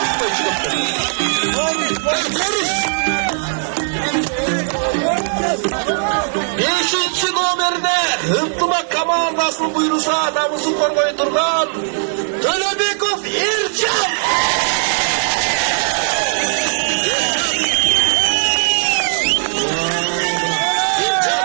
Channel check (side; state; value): left; silent; 61 dB below the other